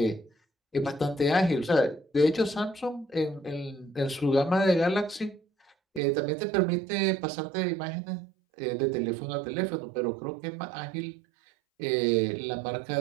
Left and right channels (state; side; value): drops out; left; at 6.0 s